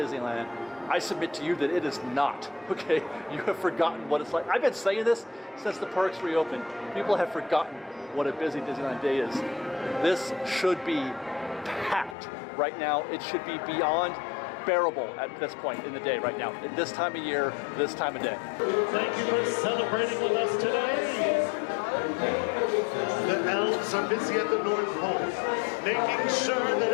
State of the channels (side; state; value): right; drops out; at 12.2 s